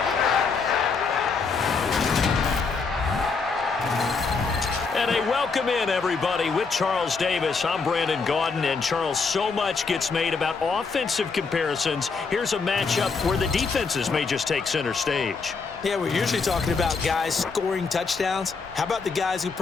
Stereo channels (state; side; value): quieter; right; 4.8 dB